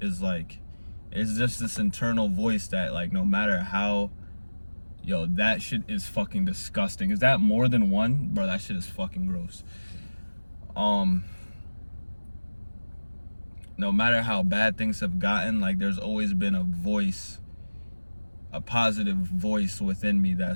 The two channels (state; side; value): inverted; both; correlation -1.00